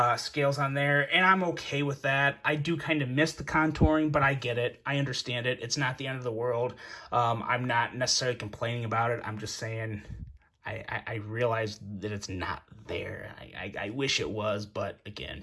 scales on there, and I'm okay with that. I do kind of miss the contouring, but I get it. I understand it. It's not the end of the world. I'm not necessarily complaining about it. I'm just saying I realize that it's not there. I wish it was, but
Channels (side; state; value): both; identical; correlation 1.00